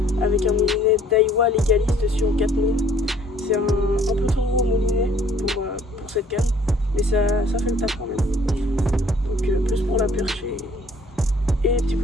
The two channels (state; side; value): normal; both; correlation 0.58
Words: avec un moulinet Daiwa Legalis dessus en 4000. C'est un peu trop gros moulinet pour cette canne, mais ça fait le taf quand même. Donc plus pour la perche et les petits